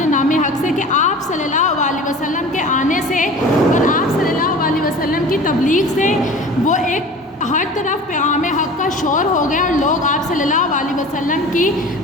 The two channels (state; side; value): normal; both; correlation 0.39